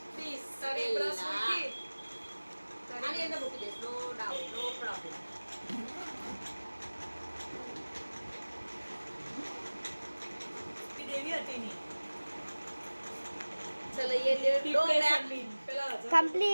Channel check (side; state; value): both; inverted; correlation -1.00